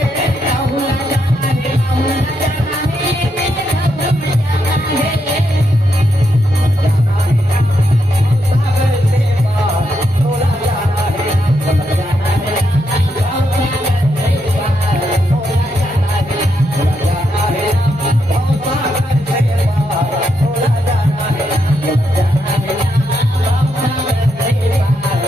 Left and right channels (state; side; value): normal; both; correlation 0.81